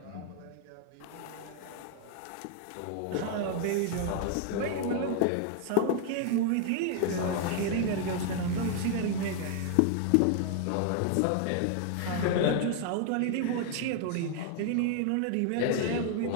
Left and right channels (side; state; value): both; different; correlation 0.00